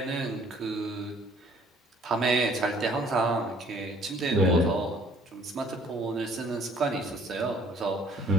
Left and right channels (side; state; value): both; normal; correlation 0.57